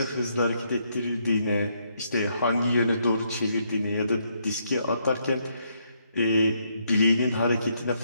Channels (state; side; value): inverted; both; correlation -0.75